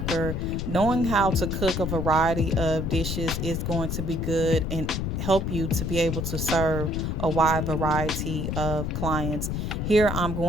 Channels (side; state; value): left; noise; rumble, 2 dB below the sound